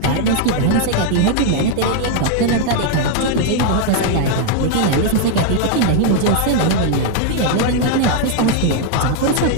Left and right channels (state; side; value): different; both; correlation 0.00